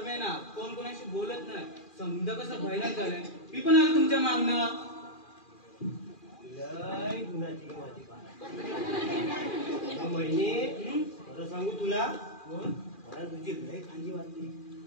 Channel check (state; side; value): late; right; 2.4 ms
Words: ना, कोण कोणाशी बोलत नाही. समजा कसं भयानक झालंय. मी पण आलो तुमच्या मागणं. लय गुणाची गं माझी बाळ. महिने खरं सांगू तुला, मला तुझी लय काळजी वाटते.